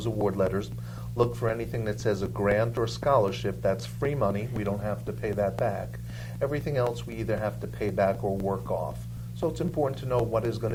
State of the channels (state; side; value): identical; both; correlation 1.00